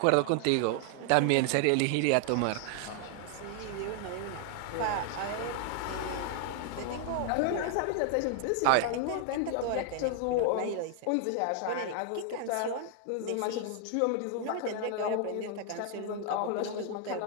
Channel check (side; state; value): both; different; correlation 0.00